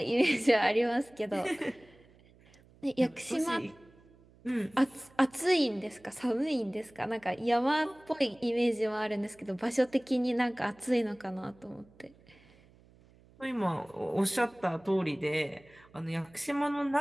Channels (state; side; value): noise; right; hum, 27 dB below the sound